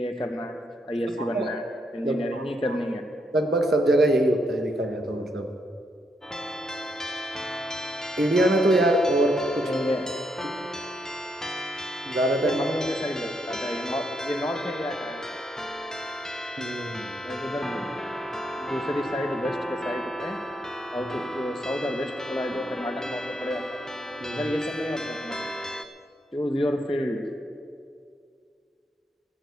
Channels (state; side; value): normal; both; correlation 0.78